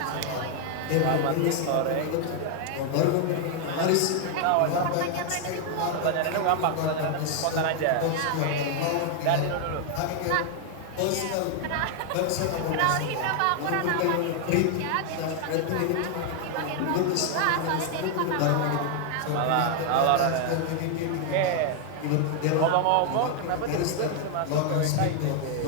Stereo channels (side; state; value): both; different; correlation 0.00